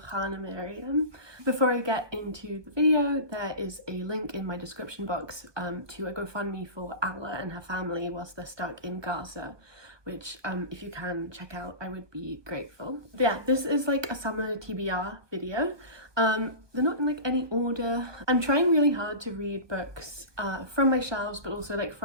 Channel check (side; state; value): left; late; 1.2 ms